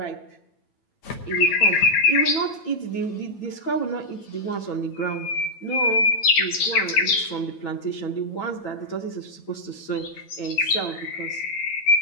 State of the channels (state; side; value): late; right; 9.0 ms